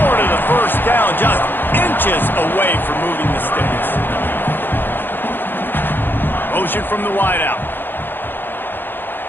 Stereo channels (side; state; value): right; late; 0.097 ms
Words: of the first down, just inches away from moving the sticks. Motion from the wideout.